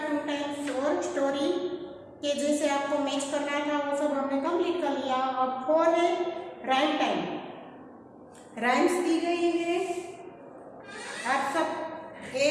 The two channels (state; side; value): identical; both; correlation 1.00